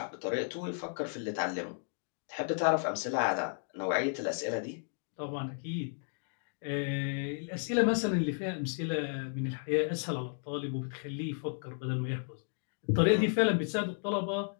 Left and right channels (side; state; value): right; silent; digital silence